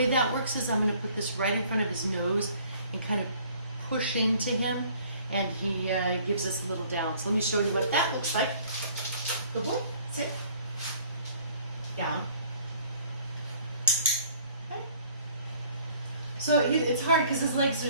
that works is I'm going to put this right in front of his nose and kind of push into him, and he gives us a little down. So let me show you what that looks like. Good boy. Sit. Down. Okay. So it's hard because his legs are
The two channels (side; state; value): both; inverted; correlation -0.55